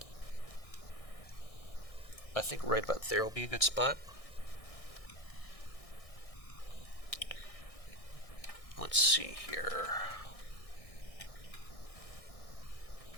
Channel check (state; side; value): late; right; 1.6 ms